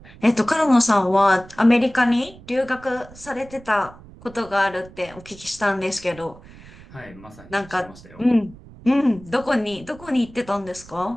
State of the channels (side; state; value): right; noise; rumble, 20 dB below the sound